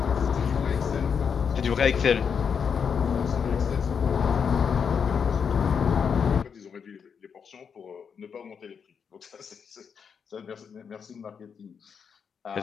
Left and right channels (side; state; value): right; quieter; 6.7 dB